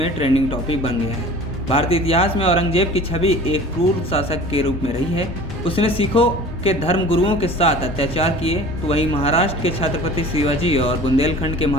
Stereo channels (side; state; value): both; normal; correlation 0.42